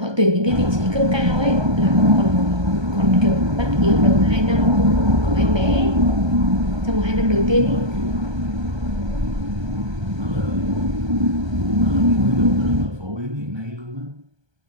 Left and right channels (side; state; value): left; late; 1.2 ms